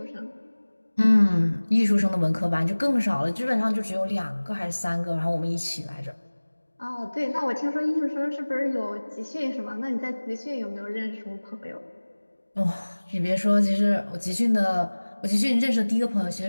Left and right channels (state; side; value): inverted; both; correlation -1.00